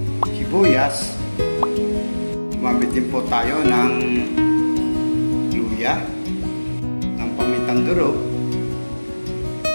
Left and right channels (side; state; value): both; inverted; correlation -1.00